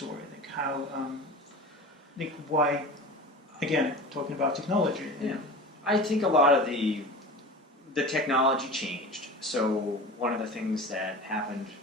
Like how, like why, again, talking about technology. Yeah. I think a lot of the technology changed. So one of the things that happened,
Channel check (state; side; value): normal; both; correlation 0.34